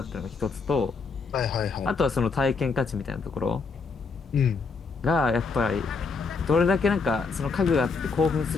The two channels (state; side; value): quieter; right; 4.6 dB